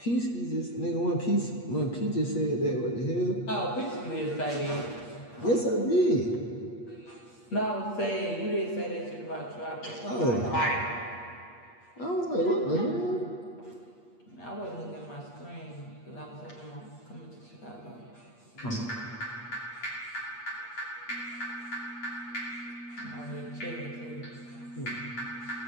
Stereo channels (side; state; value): right; late; 8.5 ms